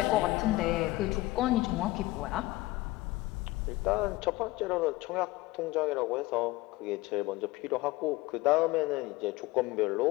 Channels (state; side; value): quieter; right; 19.8 dB